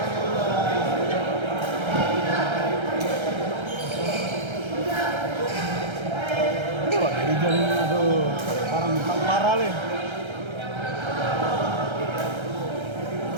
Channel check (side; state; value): left; late; 1.3 ms